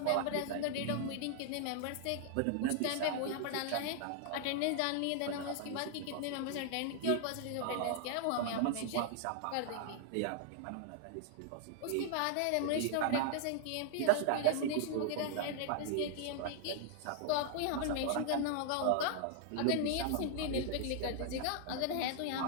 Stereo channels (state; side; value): different; both; correlation 0.00